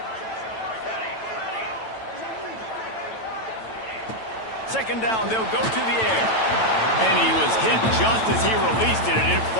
Second down, they'll go to the air. And he was hit just as he released it, and it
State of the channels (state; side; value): late; right; 9.0 ms